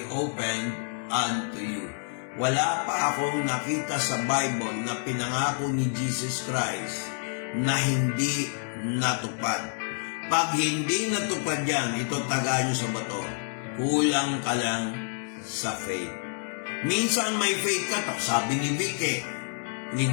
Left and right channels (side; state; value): right; silent; 59 dB below the other